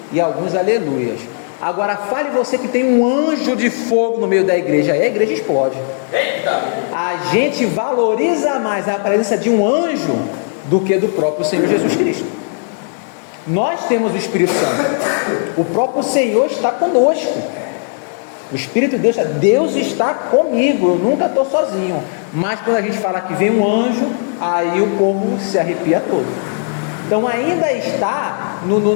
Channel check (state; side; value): silent; right; digital silence